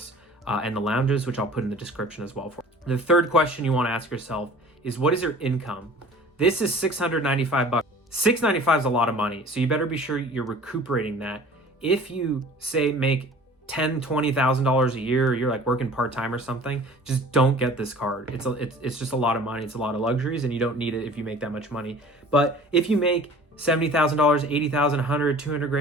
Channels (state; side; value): normal; both; correlation 0.46